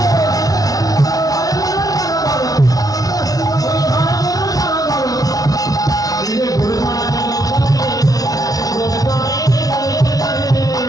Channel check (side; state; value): right; late; 0.18 ms